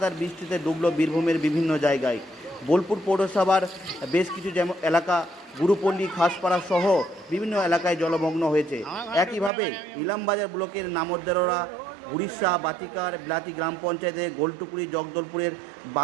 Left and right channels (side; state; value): left; drops out; at 9.5 s